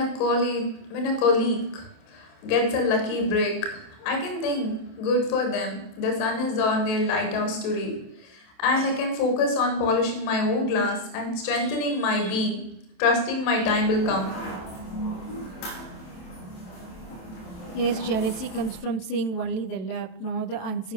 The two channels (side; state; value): right; late; 27 ms